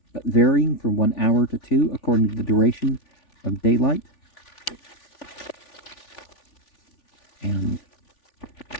but varying from 1 hour to 2 according to the duration of daylight. And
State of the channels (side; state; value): right; late; 3.4 ms